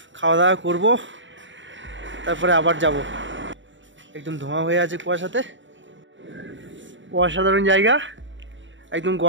খাওয়া দাওয়া করবো, তারপরে আবার যাব। একদম ধোঁয়া হয়ে আছে কুয়াশাতে, অসাধারণ জায়গা। একদম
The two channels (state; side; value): late; left; 0.55 ms